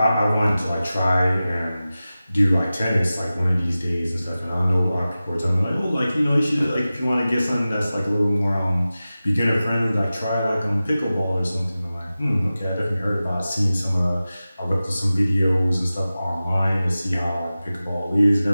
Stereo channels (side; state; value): both; inverted; correlation -0.96